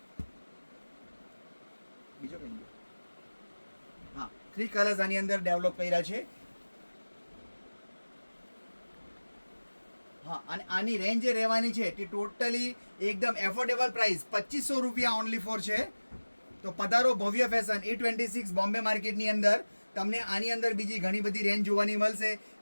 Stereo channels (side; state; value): both; inverted; correlation -1.00